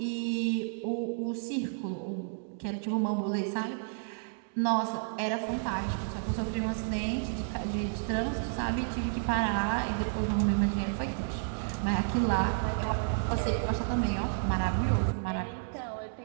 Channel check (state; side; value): silent; left; digital silence